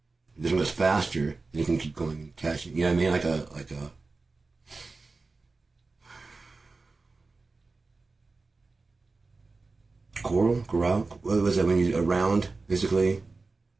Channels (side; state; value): left; quieter; 3.8 dB